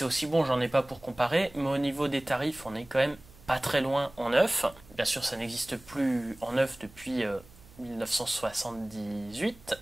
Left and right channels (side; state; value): right; noise; hum, 23 dB below the sound